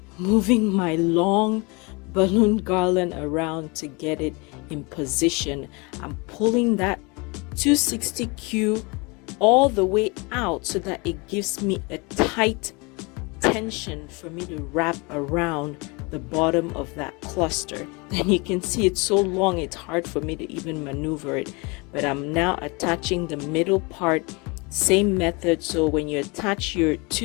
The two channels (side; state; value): right; quieter; 28.2 dB